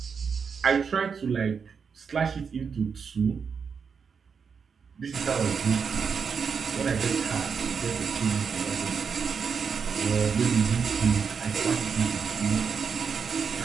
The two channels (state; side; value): quieter; left; 6.1 dB